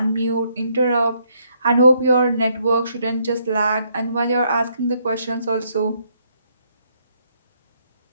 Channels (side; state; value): both; inverted; correlation -0.72